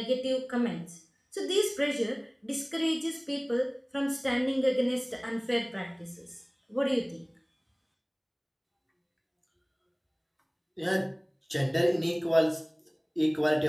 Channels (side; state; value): both; identical; correlation 1.00